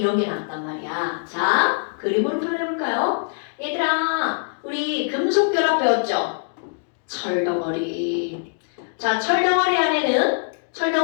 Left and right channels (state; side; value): silent; right; digital silence